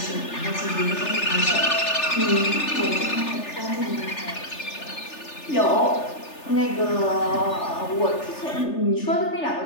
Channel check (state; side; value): late; right; 3.4 ms